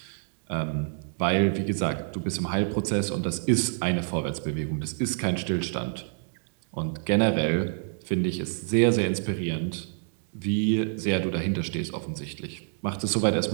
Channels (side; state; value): left; silent; digital silence